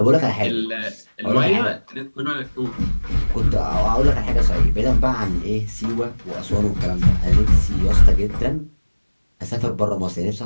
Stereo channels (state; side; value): inverted; both; correlation -1.00